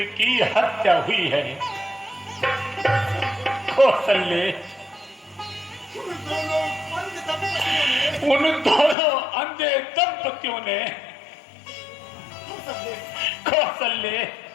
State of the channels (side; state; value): right; drops out; at 9.0 s